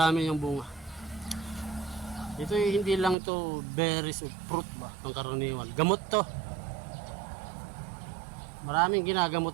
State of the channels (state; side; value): drops out; left; at 3.2 s